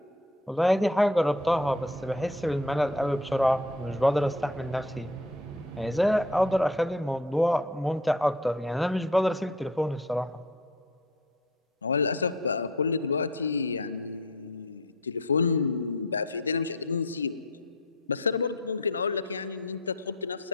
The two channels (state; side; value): normal; both; correlation 0.45